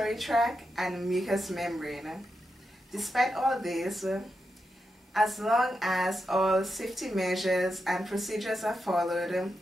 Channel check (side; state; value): both; normal; correlation 0.87